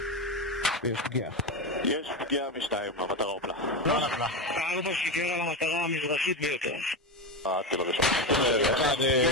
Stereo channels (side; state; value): both; normal; correlation 0.16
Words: יש פגיעה משתיים, המטרה הופלה. לא נפלה. 4 שיגר על המטרה המזרחית ביותר. טיל הראשון.